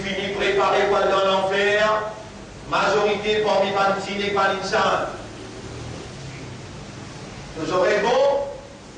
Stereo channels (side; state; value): both; identical; correlation 1.00